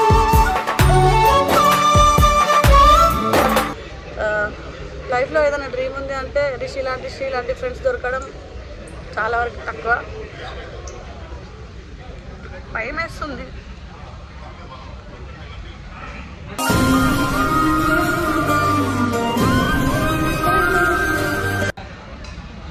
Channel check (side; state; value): both; identical; correlation 1.00